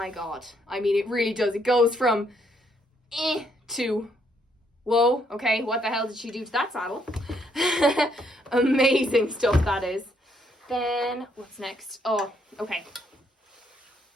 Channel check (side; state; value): both; normal; correlation 0.72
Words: God. I mean, it really does. It goes from to, whoa, okay, what the hell did she do to that saddle? Amazing stuff, that is. Then, what's next? Oh, okay.